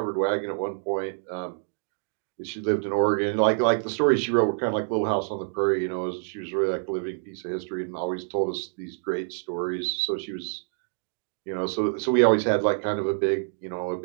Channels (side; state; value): left; silent; digital silence